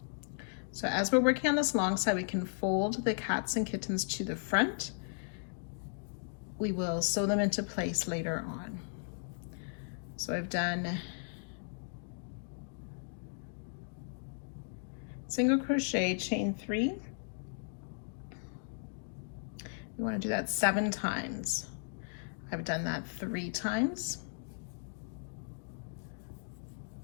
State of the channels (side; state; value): right; silent; digital silence